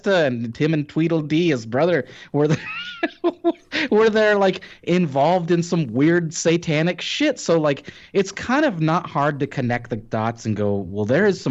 and Tim and Tweedledee, his brother, where they where they're like involved in some weird satanic shit. So like it's kind of not hard to connect the dots and go, well, there is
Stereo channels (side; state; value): both; identical; correlation 1.00